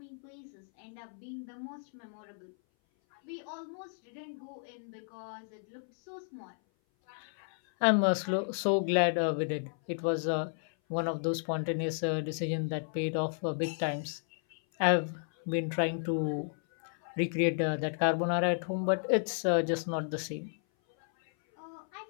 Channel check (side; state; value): right; silent; 56 dB below the other